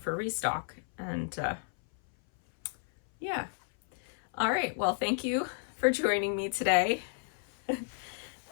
restock. And yeah. All right, well, thank you for joining me today.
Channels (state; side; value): silent; right; 56 dB below the other